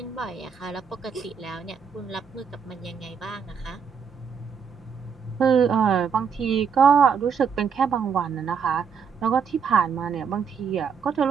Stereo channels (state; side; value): quieter; left; 6.5 dB